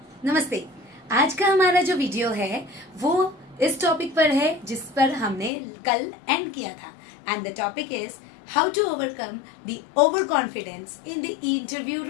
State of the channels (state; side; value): drops out; right; at 5.5 s